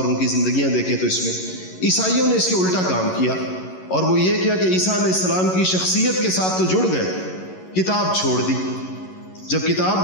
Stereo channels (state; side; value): late; right; 11 ms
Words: ان کی زندگیاں دیکھیں تو اس میں عیسائیوں نے اس کے الٹا کام کیا، اور وہ یہ کیا کہ عیسیٰ علیہ السلام کی شخصیت کے ساتھ تو جڑ گئے، کتاب چھوڑ دی. جب